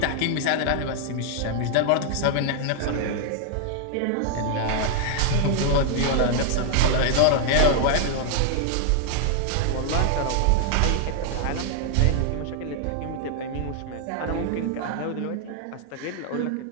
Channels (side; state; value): both; different; correlation 0.00